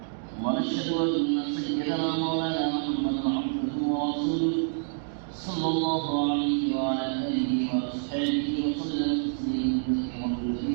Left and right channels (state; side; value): silent; left; digital silence